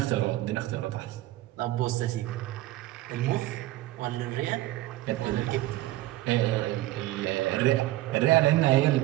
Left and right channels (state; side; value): quieter; left; 16.3 dB